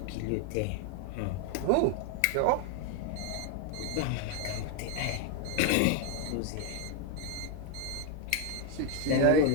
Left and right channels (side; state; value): both; different; correlation 0.01